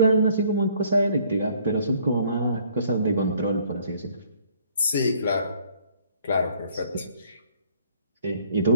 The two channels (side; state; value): both; inverted; correlation -0.61